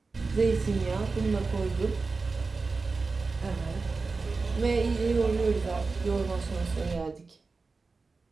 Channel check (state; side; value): quieter; left; 4.1 dB